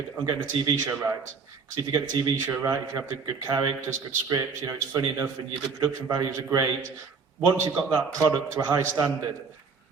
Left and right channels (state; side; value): quieter; left; 5.3 dB